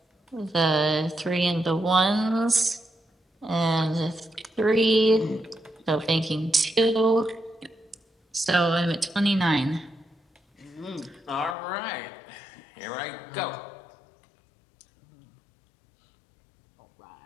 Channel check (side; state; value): right; drops out; at 11.6 s